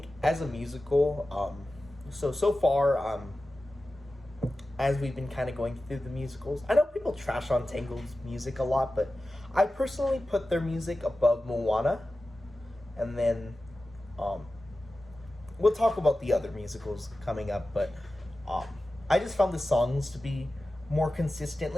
as a musical, so far, as we've been kind of going through the musicals, I know people trash on Tangled's music a lot, but I personally put their music above Moana. And then we'll talk about the other musicals coming up, but I just found the songs to be more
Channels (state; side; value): normal; both; correlation 0.94